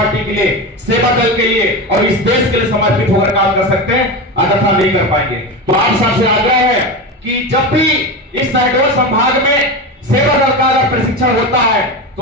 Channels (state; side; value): normal; both; correlation 0.21